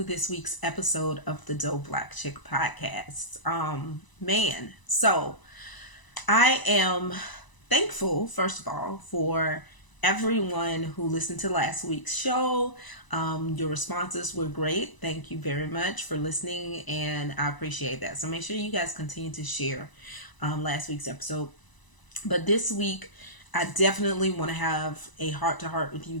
this week's episode of the Dope Black Chick Podcast. So I am thankful, first of all, for everyone who listened to last week's show. Your responses were great. Thank you very much for listening, and I appreciate that. So make sure you guys continue to share last week's episode. But this week, I definitely want to have a heart-to-heart with you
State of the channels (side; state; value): right; late; 1.0 ms